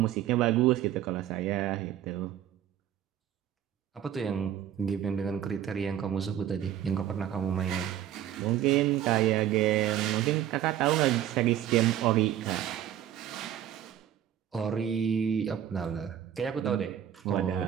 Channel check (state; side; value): quieter; left; 10.9 dB